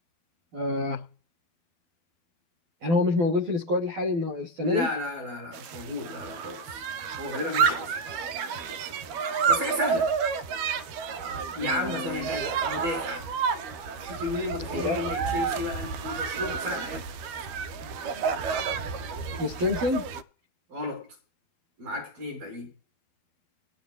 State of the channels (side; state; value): left; late; 12 ms